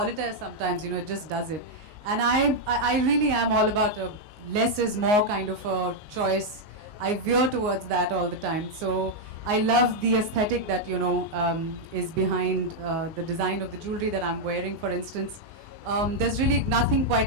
sometimes, it just does it. And I really am all about a less is more kind of a choice. I veer towards that all the time. So I love the aesthetic that, is behind the design of the jewelry that I'm wearing, for instance. There's really nothing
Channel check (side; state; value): left; late; 19 ms